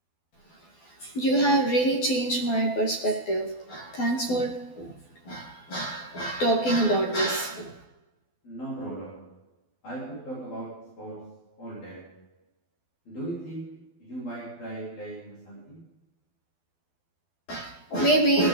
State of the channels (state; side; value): late; right; 12 ms